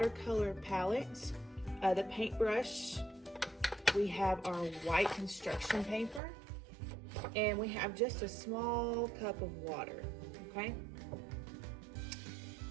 palettes, the paintbrush, we have our white construction paper, and we have just a small cup of water, okay?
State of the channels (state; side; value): drops out; left; at 6.2 s